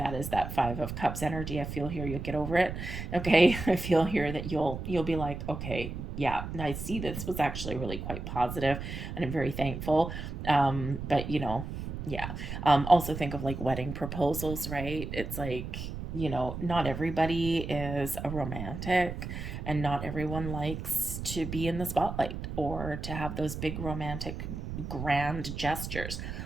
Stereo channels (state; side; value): noise; right; rumble, 7 dB below the sound